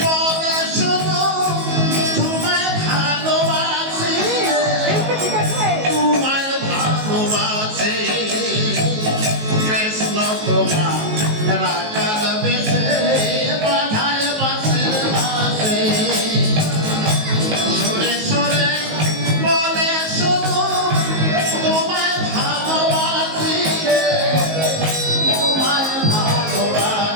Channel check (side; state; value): left; late; 19 ms